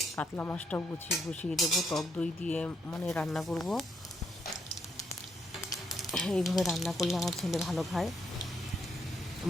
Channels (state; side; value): normal; both; correlation 0.75